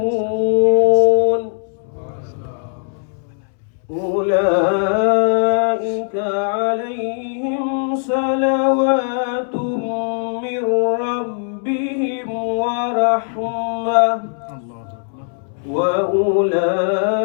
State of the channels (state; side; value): silent; right; 67 dB below the other